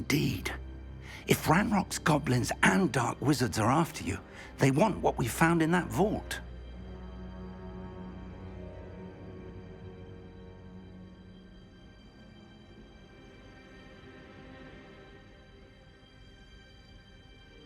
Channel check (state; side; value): identical; both; correlation 1.00